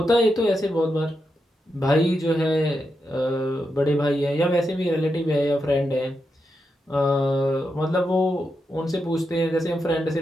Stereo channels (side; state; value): both; normal; correlation 0.86